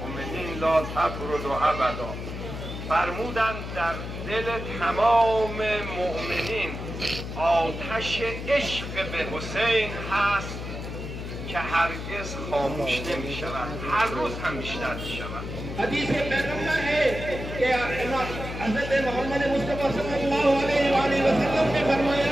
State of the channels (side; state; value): left; noise; hum, 7 dB below the sound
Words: لا تبرد ابدا. فرمودند در دل تمام مؤمنین آتش عشق به حسین هست که هرگز خاموش نمی شود، هر روز هم بیشتر می شود. حدیث پیغمبر ہے کہ حضرت محمد مصطفیٰ صلی اللہ علیہ وسلم نے